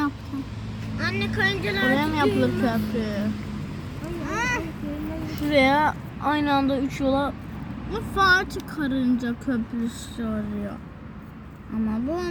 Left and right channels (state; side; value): identical; both; correlation 1.00